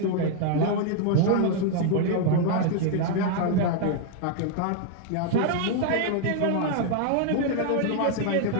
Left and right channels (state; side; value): different; both; correlation 0.00